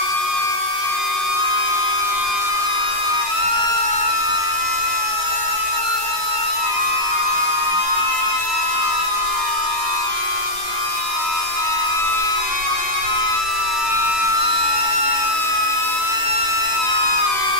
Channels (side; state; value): left; late; 11 ms